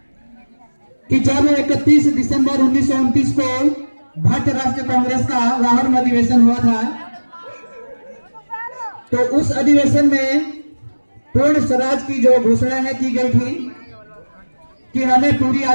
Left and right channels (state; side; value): inverted; both; correlation -1.00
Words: कि जब 31 दिसंबर 1929 को भारतीय राष्ट्रीय कांग्रेस का लाहौर में अधिवेशन हुआ था, तो उस अधिवेशन में पूर्ण स्वराज की जो घोषणा है की गई थी कि हमें पूरी